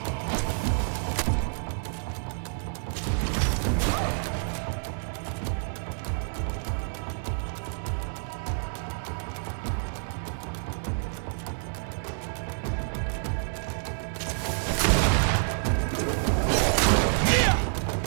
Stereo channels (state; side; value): silent; left; digital silence